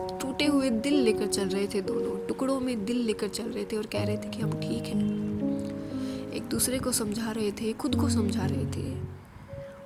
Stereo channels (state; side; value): identical; both; correlation 1.00